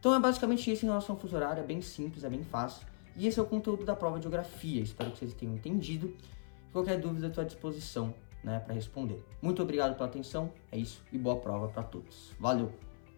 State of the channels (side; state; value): right; silent; 53 dB below the other